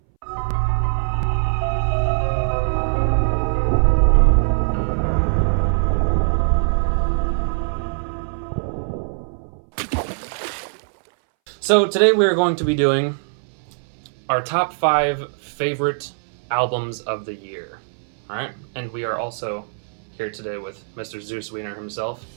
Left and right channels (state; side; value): silent; left; 62 dB below the other